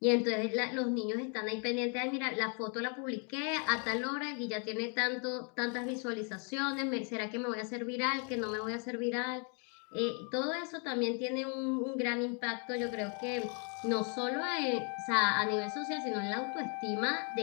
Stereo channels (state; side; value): quieter; right; 39.2 dB